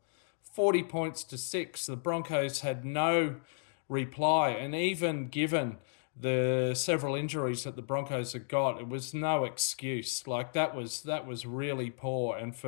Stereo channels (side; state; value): right; silent; digital silence